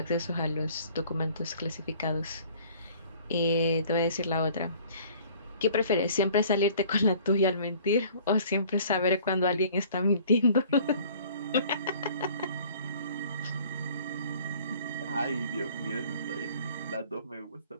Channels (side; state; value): both; inverted; correlation -0.52